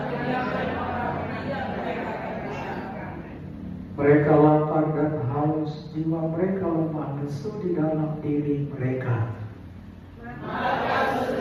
Mereka lapar dan haus, jiwa mereka lemah lesu di dalam diri mereka.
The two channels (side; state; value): both; identical; correlation 1.00